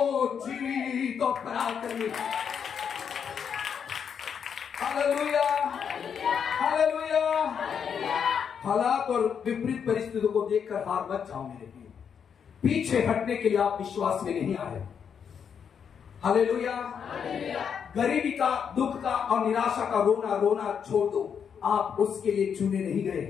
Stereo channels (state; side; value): quieter; right; 7.3 dB